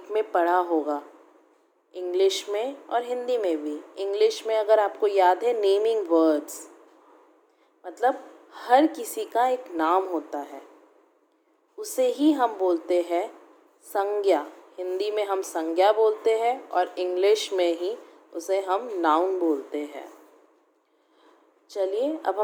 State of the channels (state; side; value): identical; both; correlation 1.00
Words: में पढ़ा होगा, इंग्लिश में और हिंदी में भी। इंग्लिश में अगर आपको याद है, नेमिंग वर्ड्स, मतलब हर किसी का एक नाम होता है, उसे ही हम बोलते हैं संज्ञा। हिंदी में हम संज्ञा बोलते हैं और इंग्लिश में ही उसे हम नाउन बोलते हैं। चलिए अब